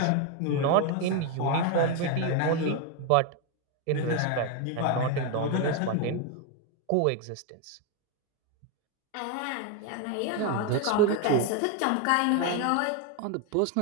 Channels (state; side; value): different; both; correlation 0.02